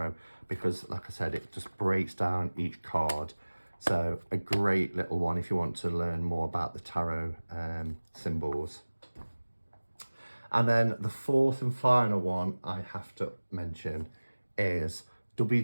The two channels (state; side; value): inverted; both; correlation -1.00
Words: because like I said, it just breaks down each card. So a great little one if you want to learn more about the tarot symbols. And then the 4th and final one I have to mention is